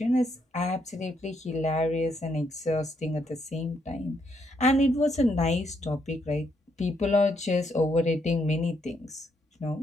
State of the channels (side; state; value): both; normal; correlation 0.75